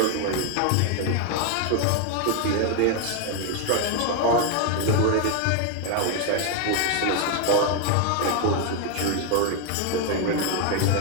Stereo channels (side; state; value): both; different; correlation 0.01